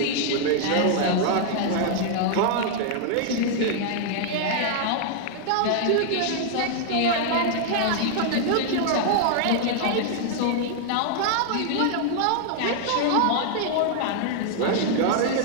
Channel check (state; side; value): different; both; correlation 0.00